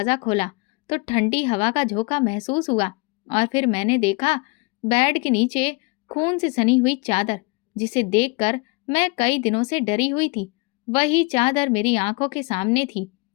खोला तो ठंडी हवा का झोंका महसूस हुआ और फिर मैंने देखा बेड के नीचे खून से सनी हुई चादर, जिसे देखकर मैं कई दिनों से डरी हुई थी। वही चादर मेरी आंखों के सामने थी।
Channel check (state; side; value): quieter; right; 28.4 dB